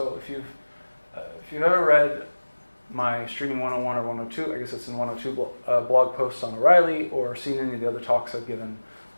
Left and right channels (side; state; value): both; inverted; correlation -1.00